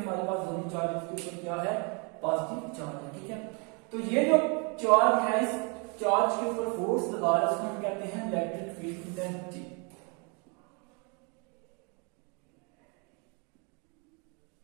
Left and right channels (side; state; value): left; quieter; 33.7 dB